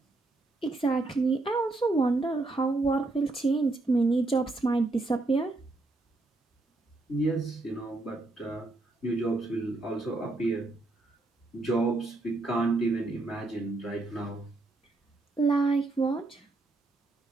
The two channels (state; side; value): quieter; left; 3.2 dB